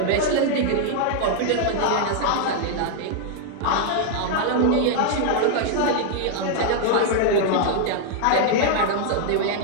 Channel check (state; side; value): different; both; correlation 0.00